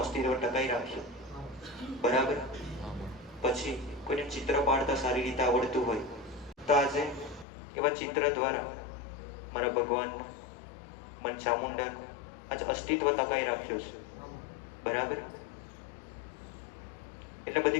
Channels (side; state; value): right; drops out; at 7.5 s